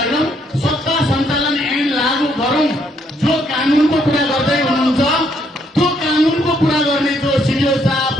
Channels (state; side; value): normal; both; correlation 0.71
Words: होइनौं। सत्ता सञ्चालन ऐन लागू गरौं। जो कानूनको कुरा गर्दै हुनुहुन्छ त्यो कानूनको कुरा गर्ने जो सिडिओ साहब,